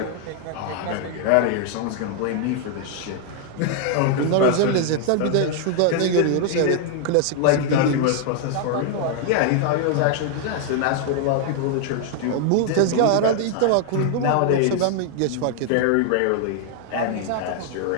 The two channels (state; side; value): different; both; correlation 0.00